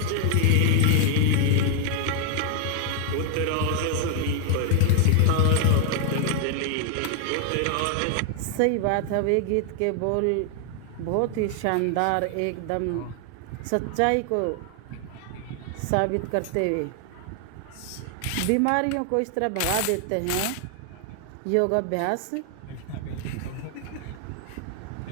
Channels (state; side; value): different; both; correlation 0.00